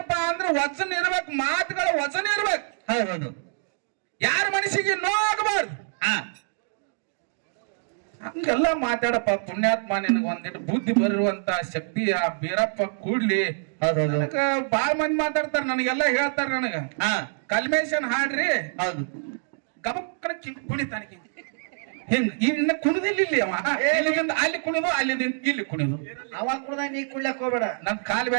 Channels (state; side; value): silent; left; digital silence